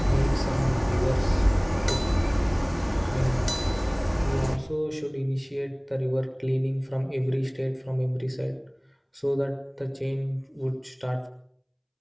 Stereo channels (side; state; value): both; identical; correlation 1.00